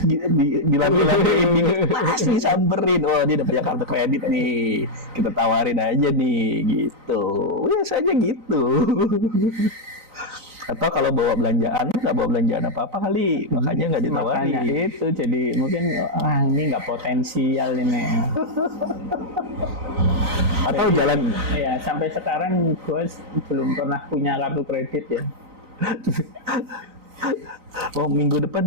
dilambi-lambiin, pasti samperin. Oh, dia udah punya kartu kredit nih, kita tawarin aja nih gitu. Biasanya gitu. Atau kalau bawa belanjaan, nggak bawa belanjaan apa-apa kali, makanya nggak ditawarin. Makanya itu, jadi mungkin ini nggak potensial ini. Atau Jadi, jalan. ya sampai sekarang gue belum pernah punya kartu kredit ya. Oh, minggu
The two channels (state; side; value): late; left; 3.9 ms